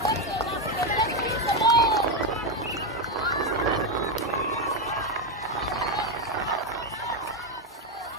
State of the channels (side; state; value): both; normal; correlation 0.07